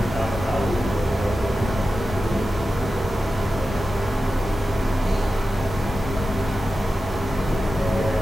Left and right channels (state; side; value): normal; both; correlation 0.93